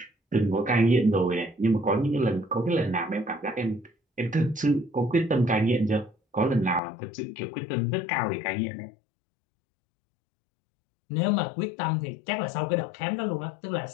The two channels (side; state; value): right; drops out; at 6.8 s